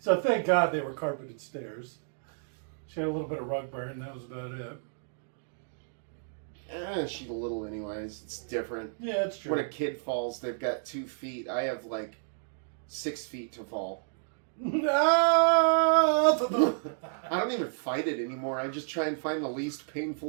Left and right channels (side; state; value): left; silent; digital silence